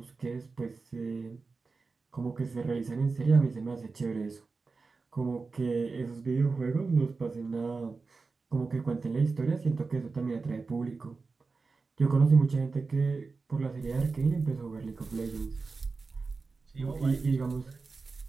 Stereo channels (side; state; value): left; quieter; 4.2 dB